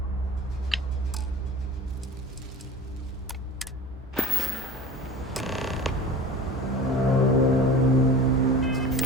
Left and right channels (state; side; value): normal; both; correlation 0.37